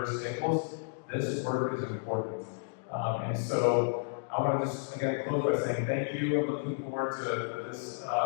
tables, this work is important. And so I want to just again close by saying thank you. I'm looking forward to this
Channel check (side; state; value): right; silent; digital silence